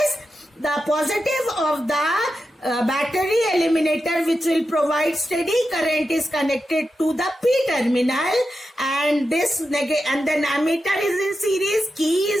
the positive of the battery eliminator, which will provide steady current, is connected to the P terminal, and then ammeter is in series, key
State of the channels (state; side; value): normal; both; correlation 0.89